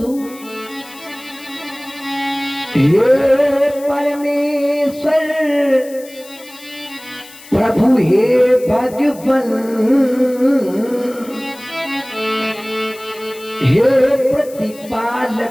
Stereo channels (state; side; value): noise; left; hiss, 20 dB below the sound